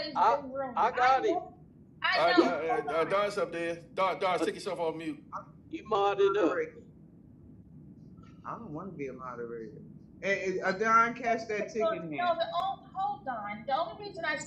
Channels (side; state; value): both; identical; correlation 1.00